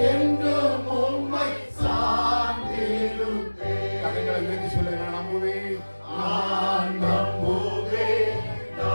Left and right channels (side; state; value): both; inverted; correlation -1.00